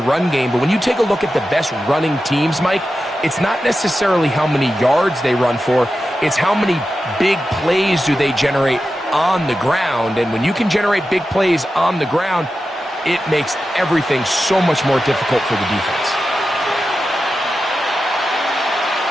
game, but when you take a look at the best running teams, Mike, it's not necessarily how many yards they run for, it's how many big plays do they generate on the ground. And when you can generate big plays on the ground, it makes everything so much more difficult for the defense.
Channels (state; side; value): normal; both; correlation 0.91